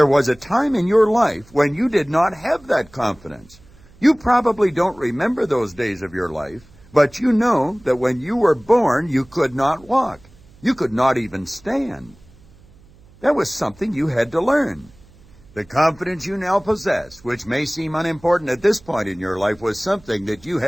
was a time in your life when you did not have that confidence. You probably don't remember those days of your life, but you know that when you were born, you could not walk. You could not even stand. That was something you had to learn. The confidence you now possess, which may seem unimportant at this point in your life, was something that you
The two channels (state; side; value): noise; right; hum, 26 dB below the sound